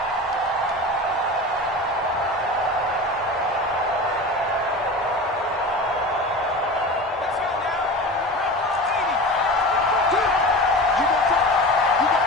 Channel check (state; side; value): normal; both; correlation 0.31